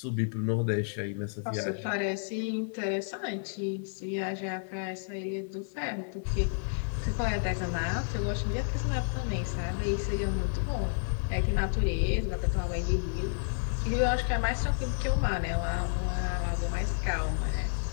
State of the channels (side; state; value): right; silent; digital silence